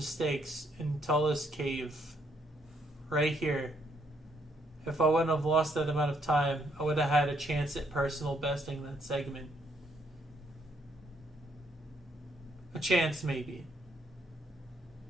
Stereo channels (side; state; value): both; normal; correlation 0.72